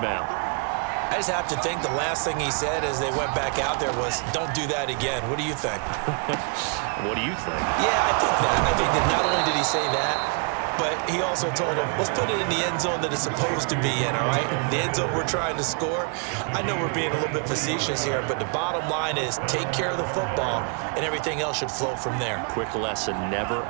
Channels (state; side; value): quieter; left; 37.8 dB